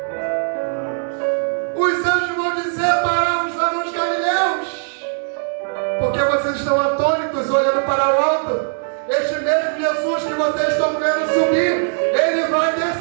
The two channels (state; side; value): silent; left; digital silence